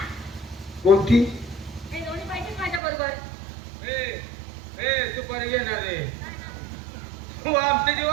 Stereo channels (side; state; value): left; drops out; at 2.8 s